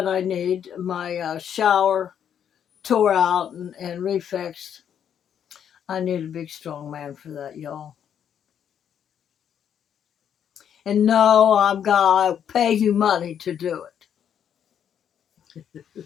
I need, my shower tore out and refixed, I need a big, strong man for that, y'all. And no, I'm going to pay you money to do it.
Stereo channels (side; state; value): right; quieter; 8.8 dB